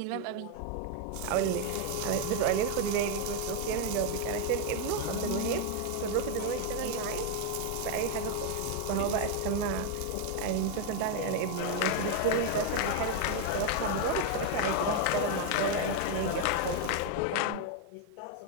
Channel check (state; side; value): different; both; correlation 0.01